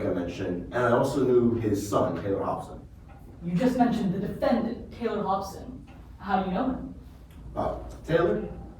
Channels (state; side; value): identical; both; correlation 1.00